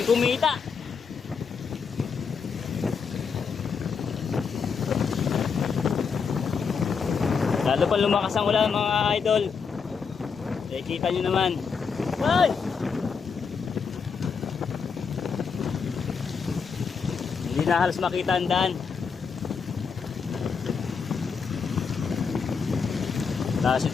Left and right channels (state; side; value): quieter; right; 5.8 dB